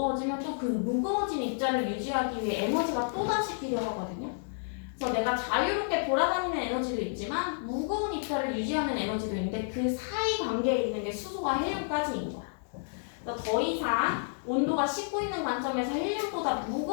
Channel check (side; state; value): right; silent; digital silence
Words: 또 그 무거워진 입자를 유지하기 위해 에너지가 또다시 필요하거든요. 그래서 내가 자유롭게 돌아다니는 에너지도 있지만 무거운 입자를 유지하는 에너지도 있는데 그 사이 관계에 있는 게 수소와 헬륨까지인 거야. 그래서 더 이상 온도가 식고 있는 관점에서 헬륨보다